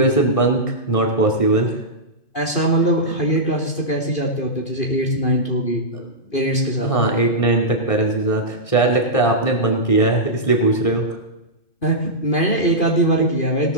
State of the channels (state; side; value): late; right; 2.5 ms